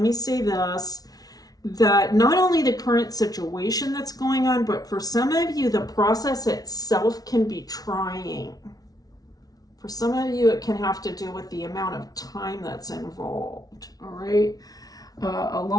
me say this, that not only the current situation that's going on, but for some of you, the process itself can be trying. For some of you, it can have to do with the amount of time that's involved, all right? A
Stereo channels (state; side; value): late; right; 0.18 ms